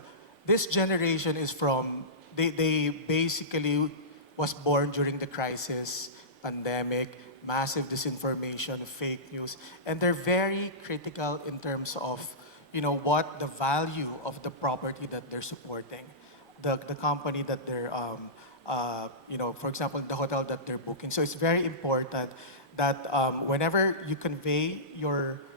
this generation is they basically was born during the crisis, pandemic, massive disinformation, fake news, and they're very critical in terms of, what the value of the property that they're supporting, the company that they're, for example, the hotel that they're booking. So it's very important that whenever you convey your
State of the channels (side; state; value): both; normal; correlation -0.19